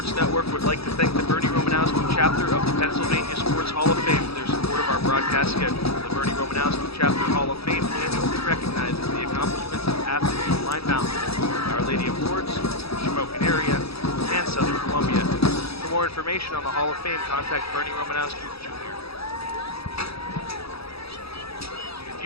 Network would like to thank the Bernie Romanowski chapter of the Pennsylvania Sports Hall of Fame for their support of our broadcast schedule. The Bernie Romanowski Chapter Hall of Fame annually recognizes the accomplishments of athletes from Line Mountain, Our Lady of Lourdes, Shamokin area, and Southern Columbia. For more information on the Hall of Fame, contact Bernie Romanowski Jr. If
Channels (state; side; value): late; right; 0.77 ms